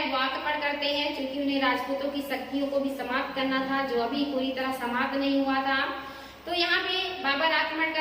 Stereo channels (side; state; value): both; identical; correlation 1.00